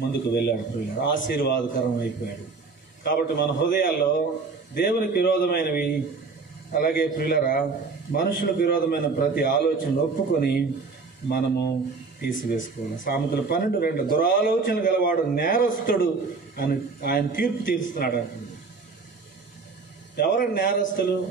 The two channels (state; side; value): quieter; left; 4.4 dB